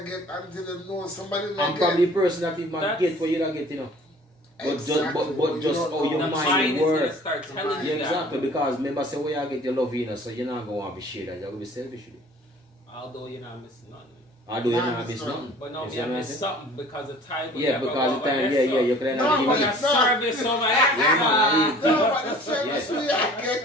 get until you know somebody that I'm get. probably the person that even That's- get what you don't get, you know. But Exactly. but just how your The mind mind is gonna works. start telling Yeah, you exactly. that. Because remember, say where you get your love, you know, so you're not going to want to be shared. You're going to be selfish. Although you're not missing nothing. Although you're Nah, not it's missing not. nothing. But no, You me see I what I'm miss saying? something because the time. Yeah, because the time, you can No, have but the it's the not. service over Yeah, No, but the service we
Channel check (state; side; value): normal; both; correlation 0.49